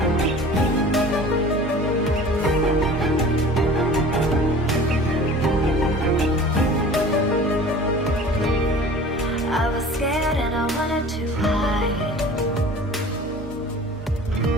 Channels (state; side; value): normal; both; correlation 0.42